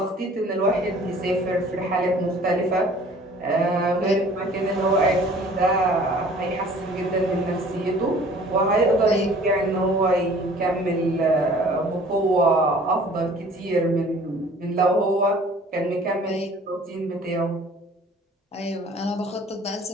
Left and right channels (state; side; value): normal; both; correlation 0.51